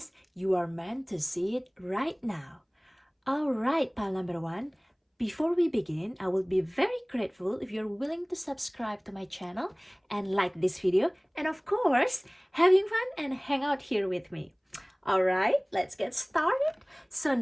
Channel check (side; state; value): both; identical; correlation 1.00